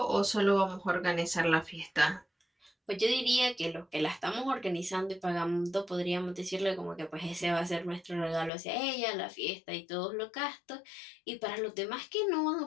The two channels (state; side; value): drops out; right; at 8.5 s